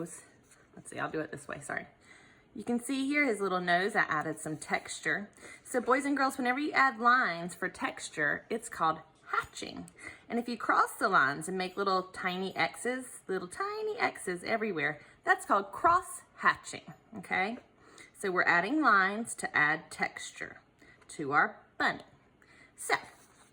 Let's see, I'll do it this way, sorry. You can see here his little nose, I added some texture. So boys and girls, whenever you add lines for texture, it's called hatching. And if you cross the lines and make little tiny X's everywhere, that's called cross hatching, okay? So we're adding lines to add texture to our bunny. So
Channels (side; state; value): both; identical; correlation 1.00